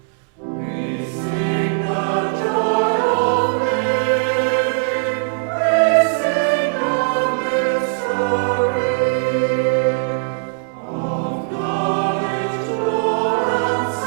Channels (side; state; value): left; silent; 65 dB below the other